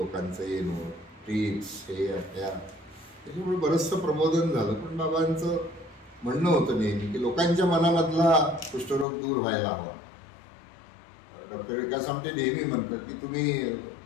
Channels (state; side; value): drops out; right; at 9.1 s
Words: येणं, ट्रिप्स, हे त्या, त्याच्यामुळे बरंचसं प्रबोधन झालं. पण बाबांचं म्हणणं होतं नेहमी की लोकांच्या मनामधला कुष्ठरोग दूर व्हायला हवा. डॉक्टर विकास आमटे नेहमी म्हणतात की तुम्ही